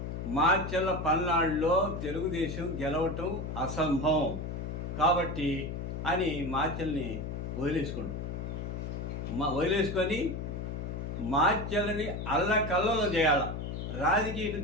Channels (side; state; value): left; noise; hum, 5 dB below the sound